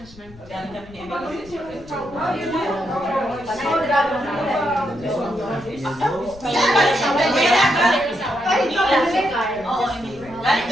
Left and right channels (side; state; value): left; noise; rumble, 21 dB below the sound